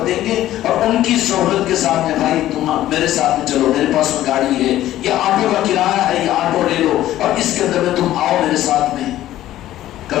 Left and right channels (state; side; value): quieter; right; 13.7 dB